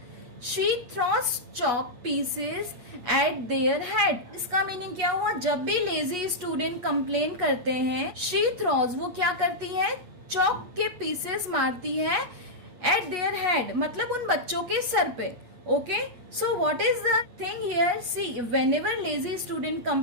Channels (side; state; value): left; late; 8.7 ms